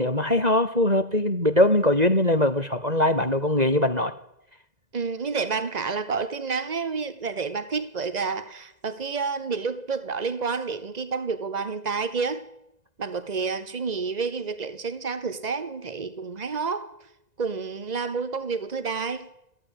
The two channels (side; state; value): left; late; 2.0 ms